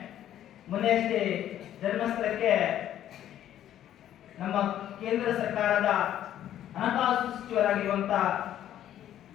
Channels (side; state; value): right; quieter; 11.5 dB